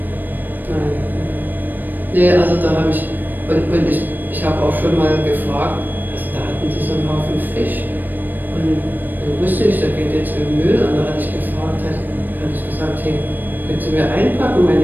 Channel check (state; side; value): late; left; 0.090 ms